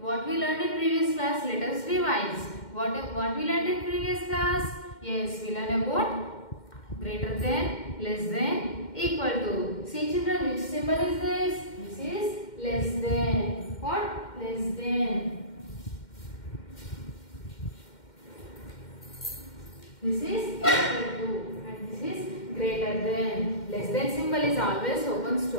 what we learned in previous class, let us revise. What we learned in previous class? Yes, we learned about greater than, less than, equal to. See children, which symbol is this? This is less than. What? Less than. This is equal to and this is greater than. Less than symbol is always opens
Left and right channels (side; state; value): right; late; 2.1 ms